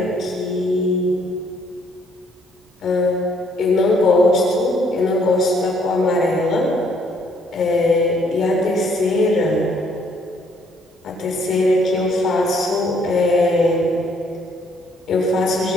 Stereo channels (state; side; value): normal; both; correlation 0.66